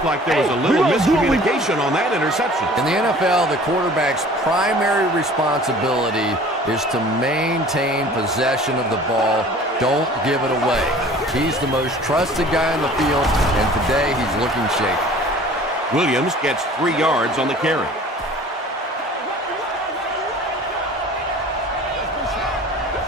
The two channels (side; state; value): both; normal; correlation 0.47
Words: like there was a little miscommunication on that interception. In the NFL, the quarterback's primary responsibility is to maintain possession of the ball. Don't give it away. He's the most trusted guy on the field, and today he's looking shaky. Williams gets 3 yards on the carry.